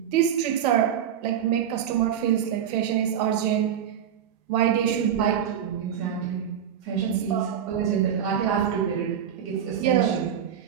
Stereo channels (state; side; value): quieter; left; 9.1 dB